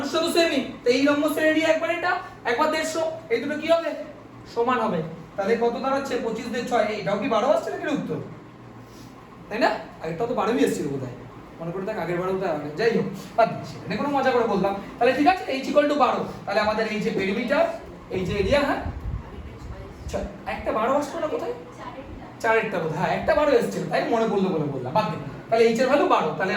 তো সেমই, তো এই রম্বসের এরিয়া একবার এটা, একবার 150, এই দুটো কি হবে? সমান হবে। তাহলে কত দাঁড়াচ্ছে? 25 দিয়ে 6, এটাও কি 12 আসছে নাকি উত্তর? তাই না? আগেরটাও তো 12ই এসেছিল বোধহয়, মনে করে দেখ আগের বারেও তো আগে। যাই হোক বাদ দিচ্ছি, এটা কোনো মজা করে বললাম। তাহলে ঠিক আছে, h = 12। তাহলে আমাদের এই যে পেরিমিটার, এই যে এরিয়া, হ্যাঁ একটা 12 আসলো না কোথায়? 4 বোধ, হ্যাঁ একটা 12 এসেছিল, তাই মনে পড়লো বলে বললাম, বাদ দে। তাহলে h এর ভ্যালু 12। তাহলে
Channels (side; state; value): both; identical; correlation 1.00